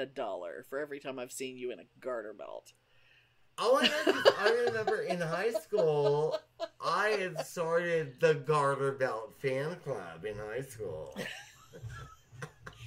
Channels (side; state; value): both; identical; correlation 1.00